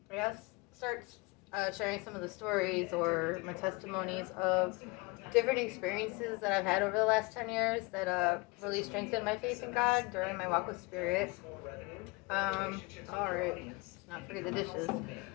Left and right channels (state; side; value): quieter; right; 25.6 dB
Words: guess start sharing some of the stories or my testimonies of different experiences that I've had over the last 10 years that really strengthened my faith in God during my walk with Spirit. All right, let's not forget the dishes.